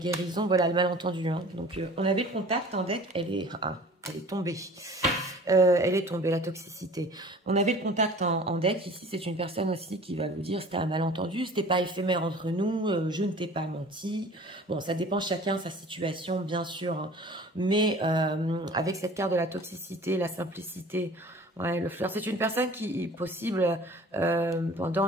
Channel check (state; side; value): normal; both; correlation 0.45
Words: voilà, le malentendu. Hein. Donc, on avait le contact en deck, elle est tombée. Elle est tombée, la toxicité. On avait le contact en deck. Ici, c'est une personne aussi qui va vous dire c'était un malentendu, c'était pas éphémère entre nous, je ne t'ai pas menti. Bon, ça dépend chacun sa situation, bien sûr. Hein. Mais avec cette carte de la toxicité, la simplicité, ouais, le fleur, c'est une personne qui est possible